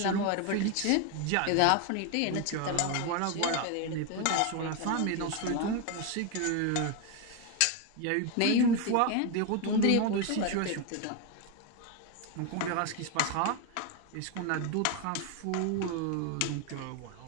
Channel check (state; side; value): different; both; correlation 0.01